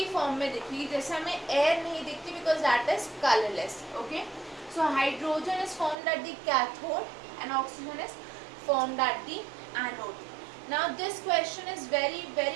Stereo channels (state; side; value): drops out; left; at 6.0 s